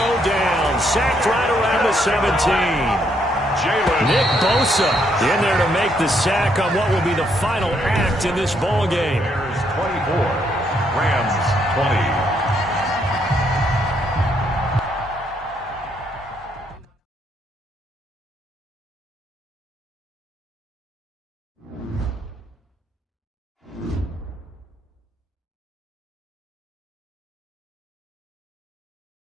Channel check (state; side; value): normal; both; correlation 0.73